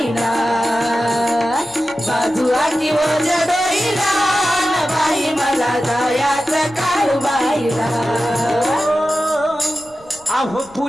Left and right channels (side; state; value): left; noise; rumble, 27 dB below the sound